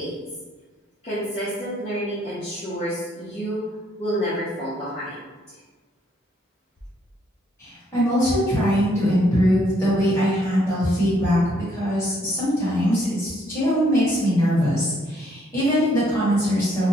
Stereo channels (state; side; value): normal; both; correlation 0.69